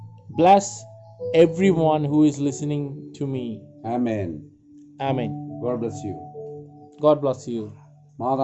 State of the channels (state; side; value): identical; both; correlation 1.00